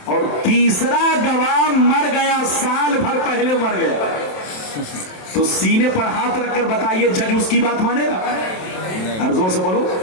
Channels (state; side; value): late; right; 27 ms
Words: और तीसरा गवाह मर गया, साल भर पहले मर गया। तो सीने पर हाथ रखकर बताइए, जज उसकी बात मानेगा? और जोर से बोलो,